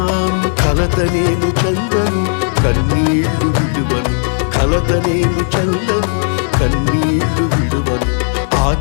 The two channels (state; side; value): silent; right; digital silence